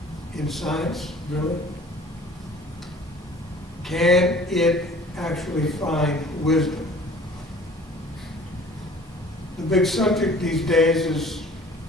In science, really? Can it actually find wisdom? The big subject these days is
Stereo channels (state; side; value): normal; both; correlation 0.49